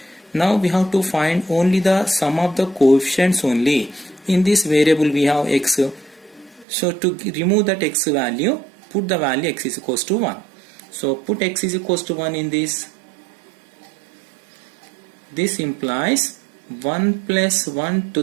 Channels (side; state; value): left; drops out; at 6.7 s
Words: Now we have to find only the sum of the coefficients only. In this variable we have x. So to remove that x value, put the value x is equals to 1. So put x is equals to 1 in this. This implies 1 plus 1